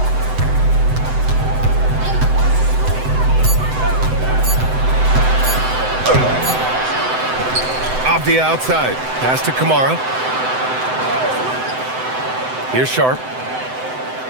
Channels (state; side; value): late; left; 7.9 ms